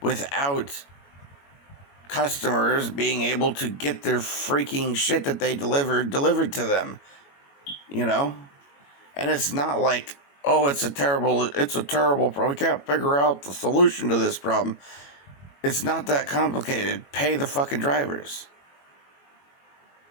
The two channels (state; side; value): late; right; 21 ms